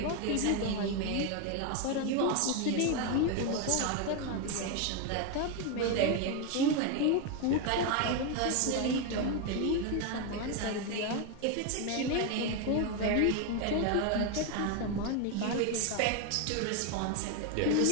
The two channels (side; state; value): both; different; correlation 0.01